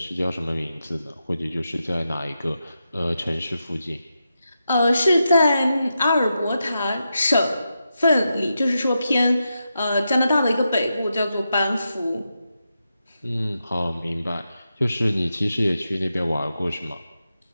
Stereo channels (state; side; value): inverted; both; correlation -0.87